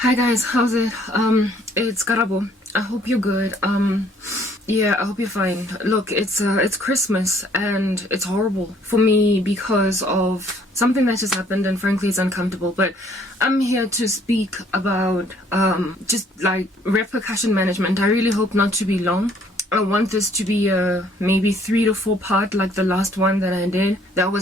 Hi guys, how's it? It's Karabo. I hope you're good. Yeah, I hope you're fine. Look, it's Christmas and it's horrible for me because of something that just happened, and frankly it's uncomfortable, but I'm here to speak about just like repercussion management. I really hope not to be long. I want this to be a maybe 3 to 4 part like the last one that I did. That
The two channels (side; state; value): both; normal; correlation 0.61